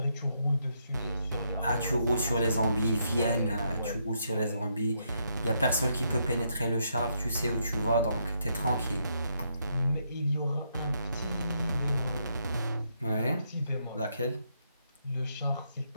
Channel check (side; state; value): both; inverted; correlation -0.77